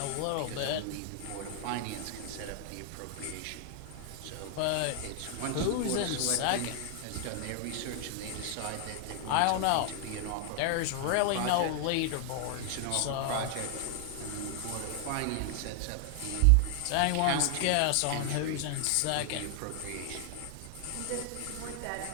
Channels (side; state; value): both; different; correlation 0.00